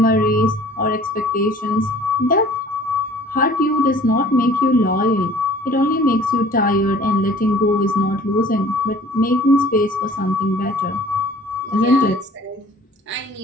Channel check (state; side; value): normal; both; correlation 0.50